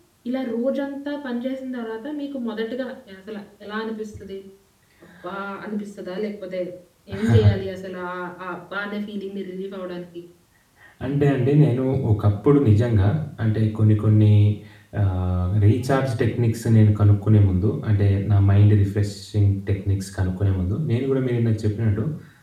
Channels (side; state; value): both; identical; correlation 1.00